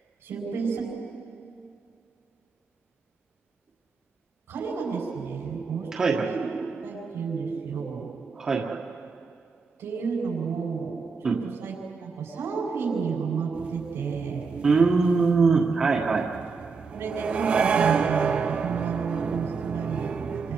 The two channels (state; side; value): quieter; left; 4.8 dB